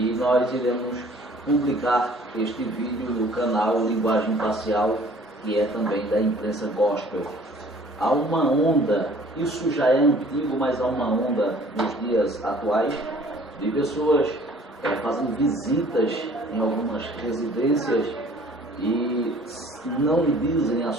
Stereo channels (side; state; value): both; normal; correlation 0.53